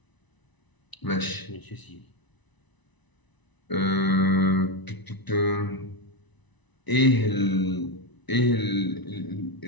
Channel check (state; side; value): late; right; 1.0 ms